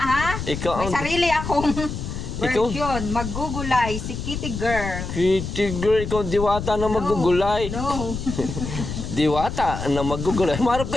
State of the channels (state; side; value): noise; left; rumble, 6 dB below the sound